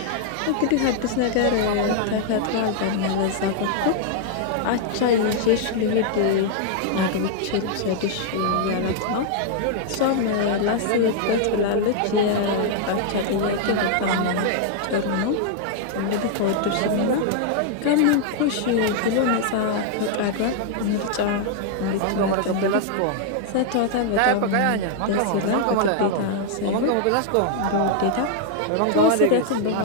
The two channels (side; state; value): both; different; correlation 0.00